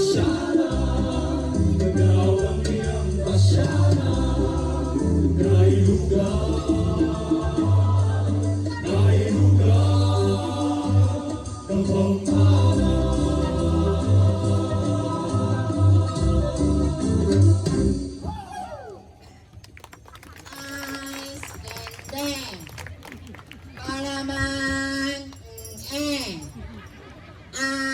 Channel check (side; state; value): both; identical; correlation 1.00